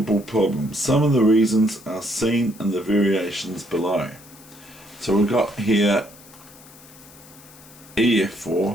problem. Some of the reasons are seen in the variations below. So we've got here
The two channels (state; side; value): noise; left; hiss, 22 dB below the sound